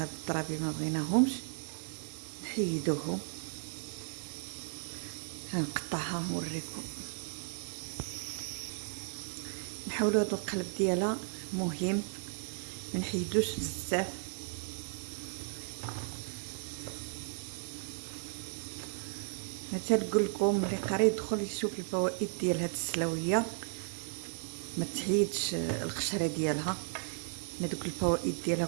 الطرابي ما بغيناهمش نحيدوهم. هنقطعها نوريكم. نحاولوا هاد القلب ديالها مهم ما نحيدوش بزاف. مثلا نقول لكم اللي قاري يدخل يشوف الفوائد ديال هاد السلاويه ما تحيدش القشره ديالها. هذوك الفوائد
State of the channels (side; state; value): left; silent; digital silence